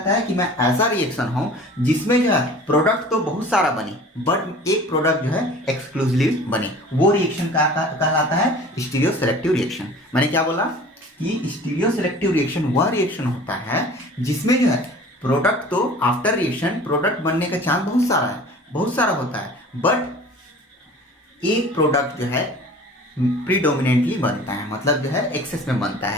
है कि मैं ऐसा रिएक्शन हूँ जिसमें जो है प्रोडक्ट तो बहुत सारा बने बट एक प्रोडक्ट जो है एक्सक्लूसिव बने, वो रिएक्शन कहलाता है स्टीरियो सेलेक्टिव रिएक्शन। मैंने क्या बोला कि स्टीरियो सेलेक्टिव रिएक्शन वह रिएक्शन होता है जिसमें जो है प्रोडक्ट तो आफ्टर रिएक्शन प्रोडक्ट बनने का चांस बहुत सारा होता है, बट एक प्रोडक्ट जो है प्रीडोमिनेंटली बनता है, मतलब जो है एक्सेस में बनता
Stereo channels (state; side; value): normal; both; correlation 0.44